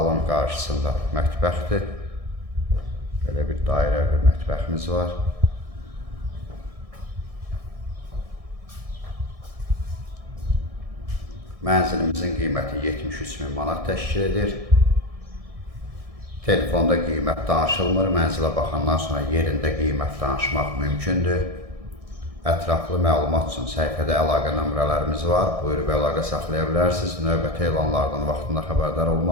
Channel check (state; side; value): late; left; 1.6 ms